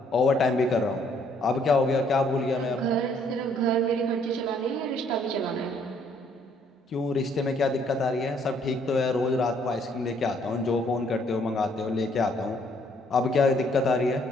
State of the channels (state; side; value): normal; both; correlation 0.65